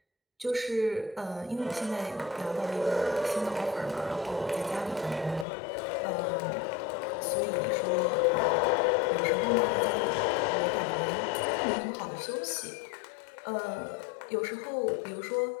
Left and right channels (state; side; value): drops out; right; at 5.5 s